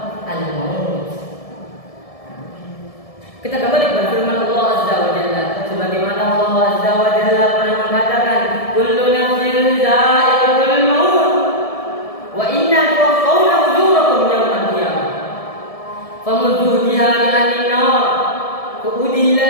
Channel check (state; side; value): late; right; 1.7 ms